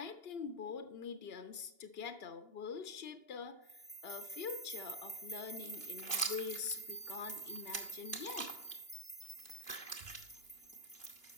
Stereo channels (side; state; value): right; late; 2.9 ms